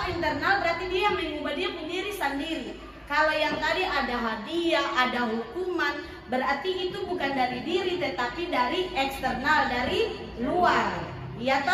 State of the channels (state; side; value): identical; both; correlation 1.00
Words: internal berarti dia mengubah dia diri sendiri. Kalau yang tadi ada hadiah, ada hukuman, berarti itu bukan dari diri tetapi dari eksternal, dari luar. Iya